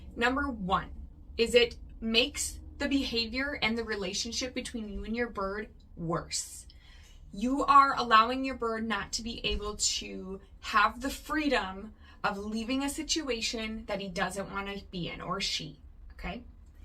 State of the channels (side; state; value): both; identical; correlation 1.00